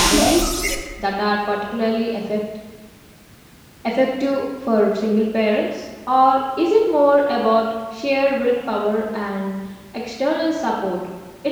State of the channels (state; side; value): identical; both; correlation 1.00